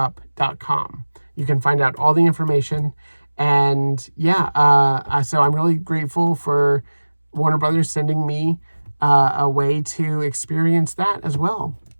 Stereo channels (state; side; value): inverted; both; correlation -1.00